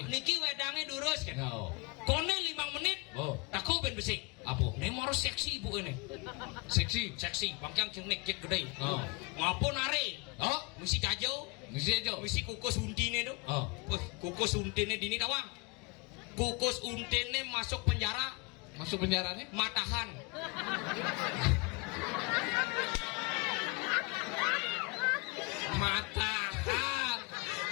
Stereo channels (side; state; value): right; quieter; 27.7 dB